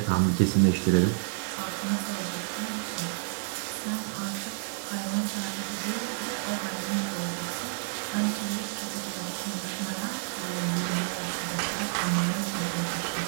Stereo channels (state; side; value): silent; left; digital silence